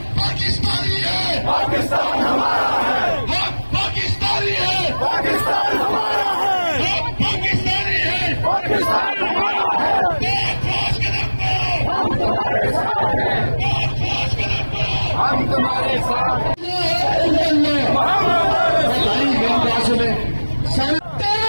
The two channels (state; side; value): inverted; both; correlation -1.00